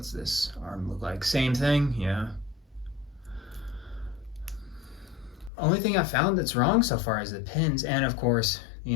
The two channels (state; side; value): drops out; right; at 5.5 s